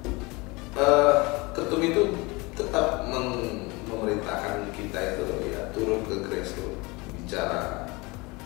Ketum itu tetap memerintahkan kita itu ya turun ke grassroots, bicara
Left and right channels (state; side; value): quieter; right; 25.1 dB